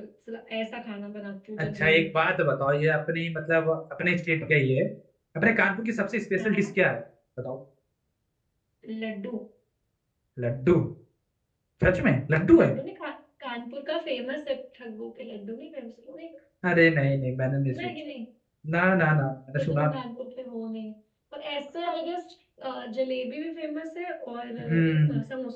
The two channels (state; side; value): identical; both; correlation 1.00